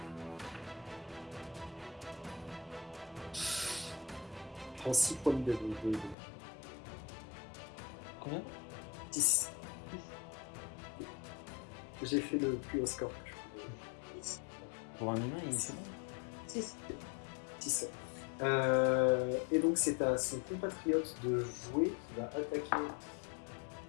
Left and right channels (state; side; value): drops out; right; at 6.2 s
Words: Je prends 6 points de Combien? 6. J'ai fait le plus haut score que je pouvais. Pour un humain, il fait bon. 6. 6. Et donc c'est à son compatriote de jouer qui va attaquer,